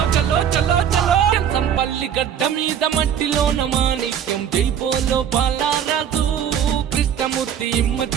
చలో చలో చలో ఎంసన్పల్లి గడ్డ మీద మట్టిలోన మాణిక్యం జైపోలో బాలరాజు కృష్ణమూర్తి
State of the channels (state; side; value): quieter; left; 8.8 dB